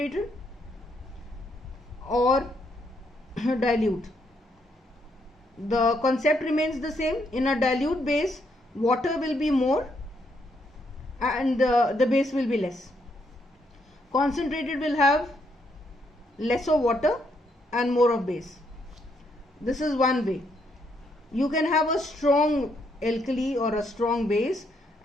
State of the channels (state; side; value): normal; both; correlation 0.75